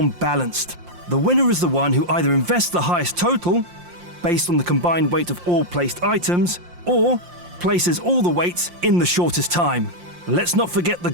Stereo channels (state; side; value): late; left; 5.7 ms